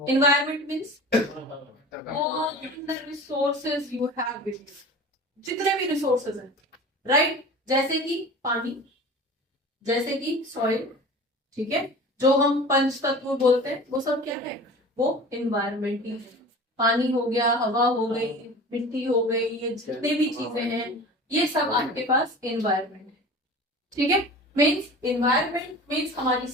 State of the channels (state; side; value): normal; both; correlation 0.38